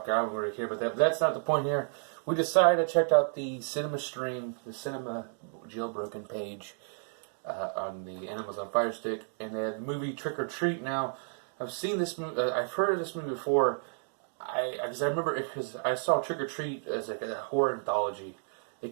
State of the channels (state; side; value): silent; left; digital silence